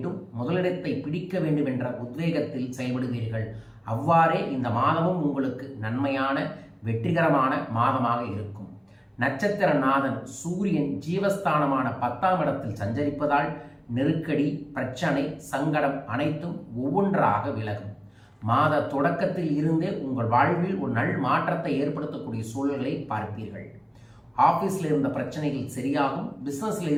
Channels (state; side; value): identical; both; correlation 1.00